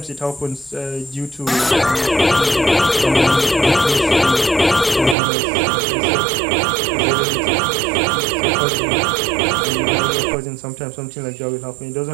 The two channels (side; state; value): left; drops out; at 5.2 s